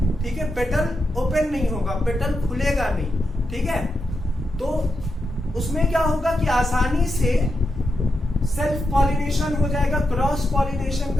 ठीक है। पेटल ओपन नहीं होगा, पेटल खुलेगा नहीं, ठीक है। तो उसमें क्या होगा कि आसानी से सेल्फ पॉलिनेशन हो जाएगा, क्रॉस पॉलिनेशन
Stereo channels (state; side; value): normal; both; correlation 0.86